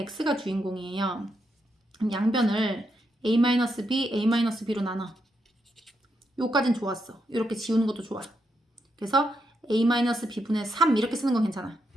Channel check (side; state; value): both; normal; correlation 0.82